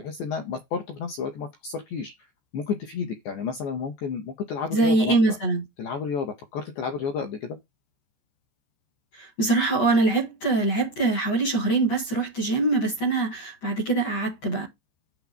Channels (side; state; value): right; late; 14 ms